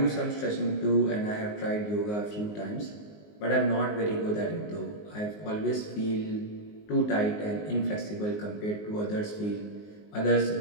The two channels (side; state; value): right; late; 19 ms